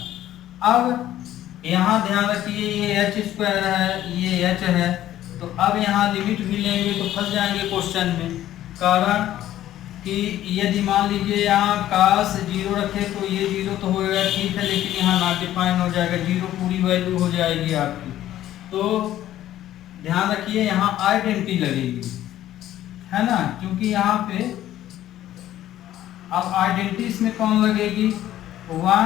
अब यहाँ ध्यान रखिए, ये h स्क्वायर है, ये h है, तो अब यहाँ लिमिट भी लेंगे तो फंस जाएंगे क्वेश्चन में। कारण कि यदि मान लीजिए यहाँ काश 0 रखे तो ये 0 तो होएगा ठीक है, लेकिन यहाँ नॉट डिफाइन हो जाएगा, 0 पूरी वैल्यू हो जाएगी आपकी। तो ध्यान रखिए यहाँ आइडेंटिटी लगेगी, है ना, क्योंकि यहाँ पे अब आइडेंटिटी इसमें कौन लगेगी,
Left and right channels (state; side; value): quieter; right; 13.0 dB